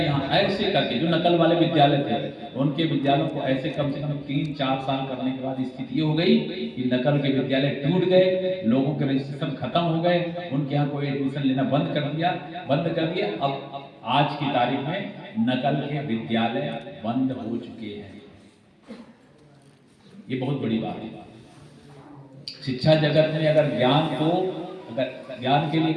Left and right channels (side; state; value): both; identical; correlation 1.00